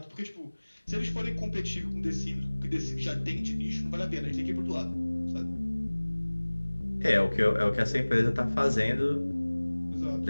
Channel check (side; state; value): both; inverted; correlation -1.00